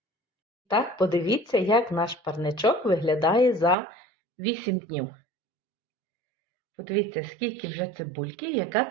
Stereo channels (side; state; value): left; drops out; at 3.8 s